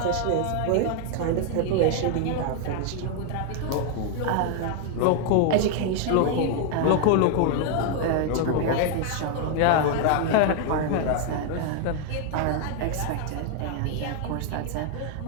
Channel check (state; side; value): different; both; correlation 0.00